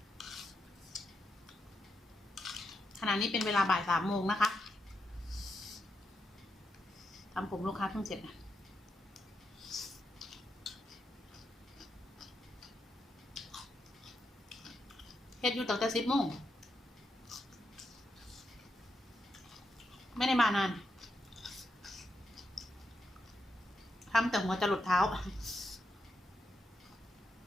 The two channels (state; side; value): normal; both; correlation 0.84